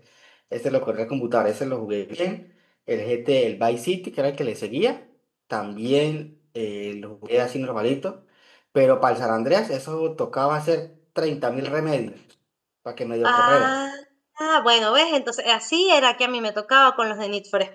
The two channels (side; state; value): both; identical; correlation 1.00